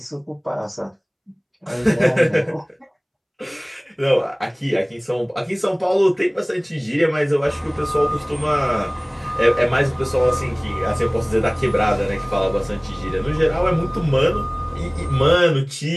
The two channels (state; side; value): identical; both; correlation 1.00